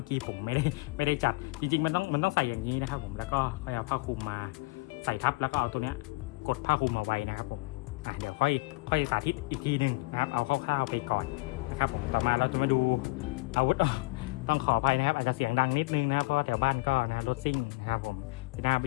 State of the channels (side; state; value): right; quieter; 25.3 dB